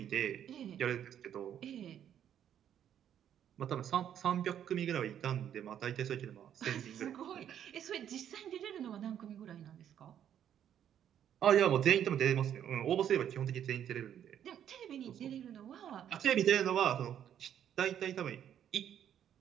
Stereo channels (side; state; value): left; quieter; 9.8 dB